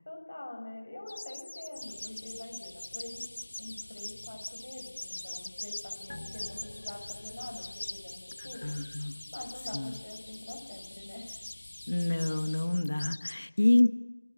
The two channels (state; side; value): inverted; both; correlation -1.00